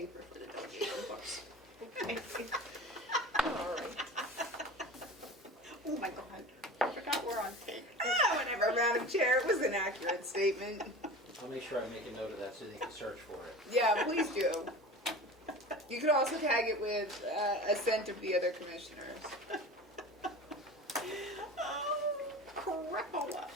for the delegation books. All right. Oh my God, I forgot we're on tape. Whatever, Madam Chair, it was an accurate statement. I'll make sure I make a note of that so they can search for it. Yeah, please do. You could also tag it with assent of the other commissioners. Crapola.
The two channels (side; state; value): both; normal; correlation 0.35